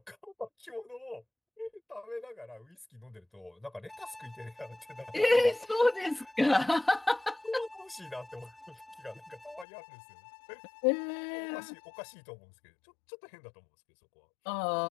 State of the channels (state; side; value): drops out; right; at 9.7 s